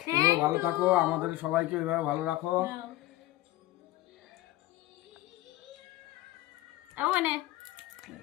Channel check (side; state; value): right; quieter; 16.5 dB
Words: ভালো থাকো, আমাদের সবাইকে এইভাবে ভালো রাখো। মানে